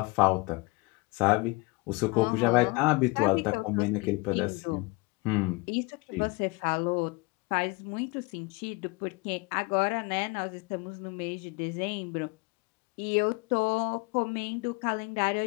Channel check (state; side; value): quieter; right; 25.3 dB